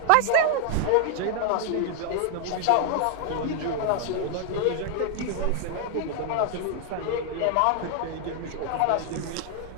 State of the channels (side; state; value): both; different; correlation 0.00